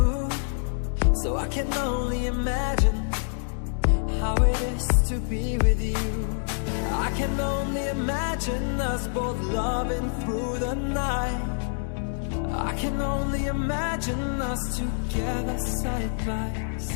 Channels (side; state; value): right; silent; digital silence